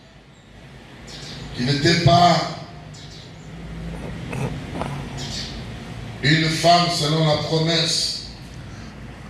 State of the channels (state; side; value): identical; both; correlation 1.00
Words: qui n'était pas une femme selon la promesse,